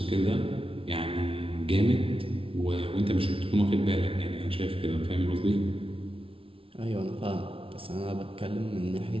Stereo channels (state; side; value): late; left; 0.26 ms